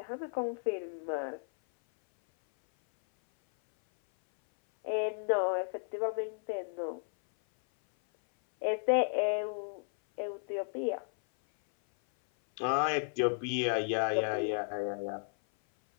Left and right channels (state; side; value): silent; right; 55 dB below the other